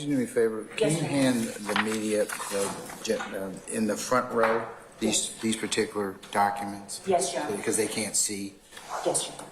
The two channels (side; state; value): both; identical; correlation 1.00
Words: do me a favor? Can you hand the media in the front row these particular documents? Yes, Your Honor. Because they can't see. Yes, Your